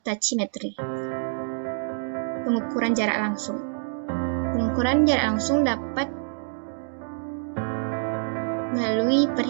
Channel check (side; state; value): left; silent; digital silence